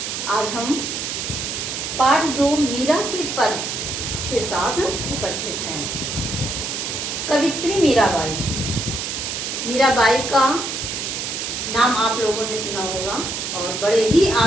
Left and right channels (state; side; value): noise; right; hiss, 4 dB below the sound